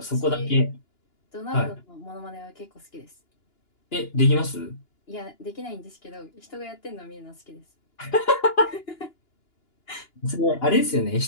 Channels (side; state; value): right; late; 2.9 ms